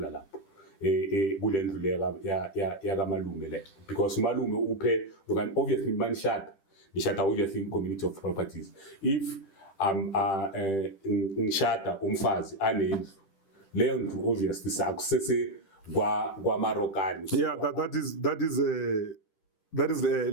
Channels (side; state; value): right; late; 10 ms